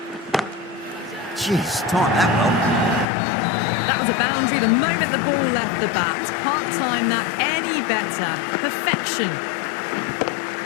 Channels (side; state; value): right; drops out; at 3.1 s